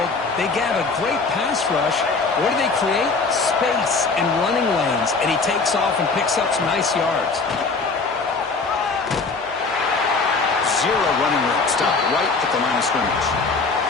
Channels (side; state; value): right; quieter; 4.2 dB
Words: They have a great pass rush. What do they create? Space and running lanes. And he takes off and picks up some nice yards. Zero running room. Stop right at the line of scrimmage.